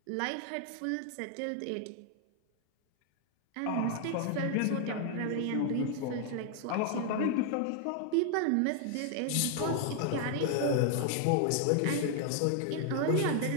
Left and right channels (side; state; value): both; different; correlation 0.00